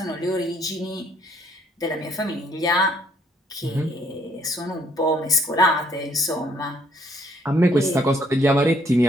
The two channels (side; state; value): both; normal; correlation 0.66